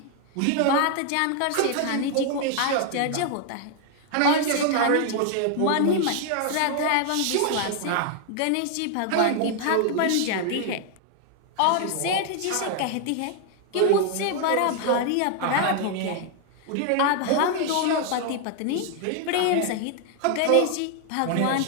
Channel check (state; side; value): different; both; correlation 0.00